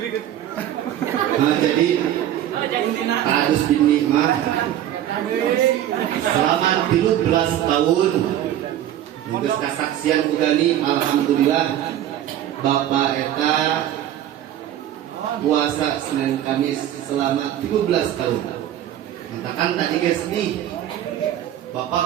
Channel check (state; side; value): quieter; left; 11.8 dB